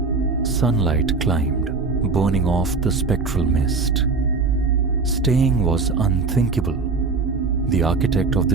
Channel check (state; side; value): quieter; left; 4.3 dB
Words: Sunlight climbed, burning off the spectral mist. Staying was unthinkable. The architect of